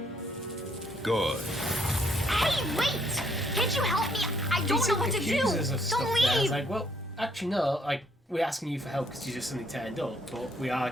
Good. Hey, wait! Can't you help me? I don't know what to do. Accuse us of stuff Don't there. It's leave. like, well, actually no. Like, we're asking you for help because you just suddenly turned up, but we are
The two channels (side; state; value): both; normal; correlation 0.68